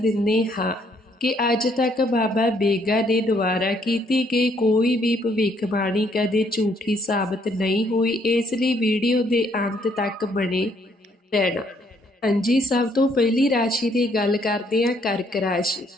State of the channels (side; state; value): both; normal; correlation 0.68